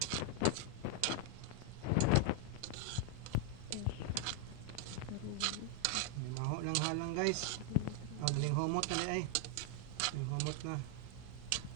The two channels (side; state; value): both; different; correlation 0.00